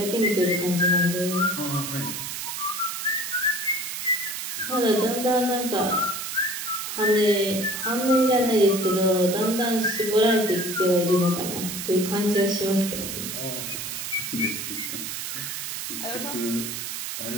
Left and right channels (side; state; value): right; noise; hiss, 5 dB below the sound